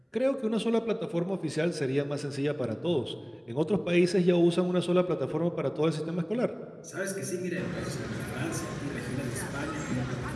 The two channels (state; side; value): identical; both; correlation 1.00